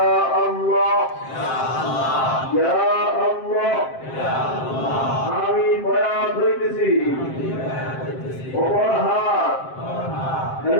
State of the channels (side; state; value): right; late; 7.6 ms